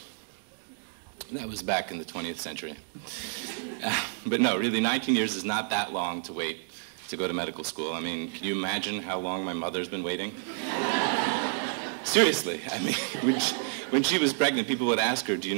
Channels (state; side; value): silent; left; digital silence